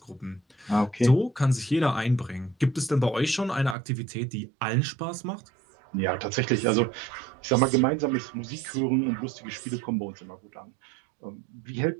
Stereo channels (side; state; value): left; drops out; at 3.8 s